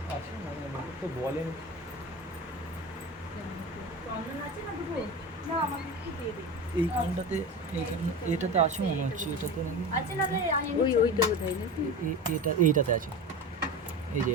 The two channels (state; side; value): normal; both; correlation 0.28